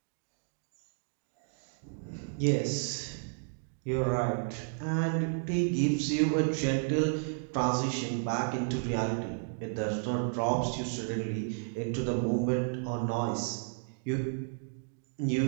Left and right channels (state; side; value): silent; left; digital silence